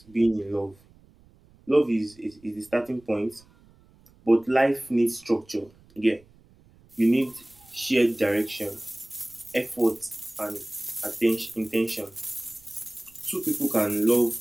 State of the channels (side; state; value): right; noise; rumble, 28 dB below the sound